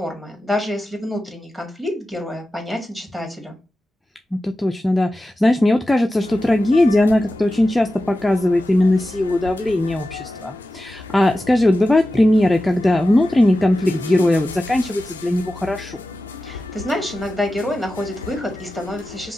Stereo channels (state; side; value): normal; both; correlation 0.93